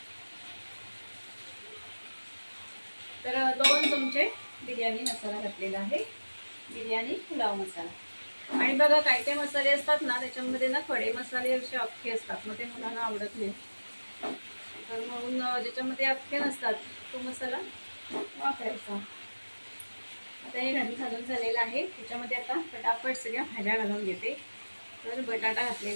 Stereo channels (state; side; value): inverted; both; correlation -1.00